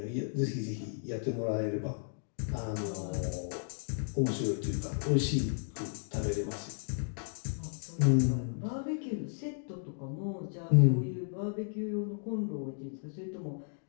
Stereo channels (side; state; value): right; silent; digital silence